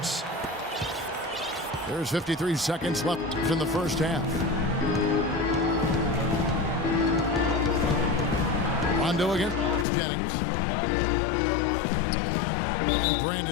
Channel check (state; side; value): drops out; right; at 9.9 s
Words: There's 53 seconds left in the first half. Rondo against Jennings. And